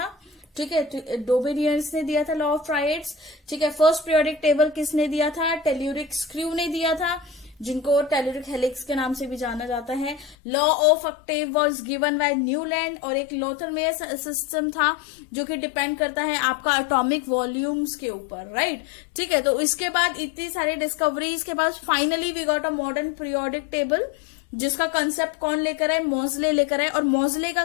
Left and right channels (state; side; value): drops out; right; at 10.4 s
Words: ठीक है। डोबेनियर्स ने दिया था लॉ ऑफ ट्रायड्स, ठीक है। फर्स्ट पीरियोडिक टेबल किसने दिया था? टेल्यूरिक स्क्रू ने दिया था, जिनको टेल्यूरिक हेलिक्स के नाम से भी जाना जाता है। Law of octave was given by Newland, और एक लोथरमेयर सिस्टम था जो कि डिपेंड करता है आपका एटॉमिक वॉल्यूम्स के ऊपर, राइट, ठीक है। तो इसके बाद इतनी सारी डिस्कवरीज के बाद finally we got a modern periodic table, जिसका कंसेप्ट कौन लेकर आए? मोज़ले लेकर आए। और मोज़ले का